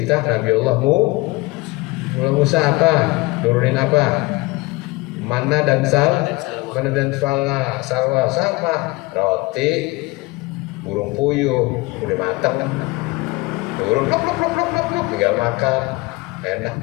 Nabi Allah Musa apa? Nurunin apa? Mana dan salwa sama roti, burung puyuh, udah matang. Burung plok, tinggal makan. Enak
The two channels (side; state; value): right; quieter; 22.7 dB